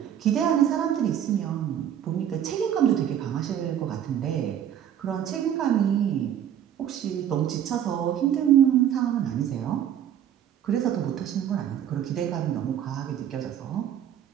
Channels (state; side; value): quieter; left; 10.0 dB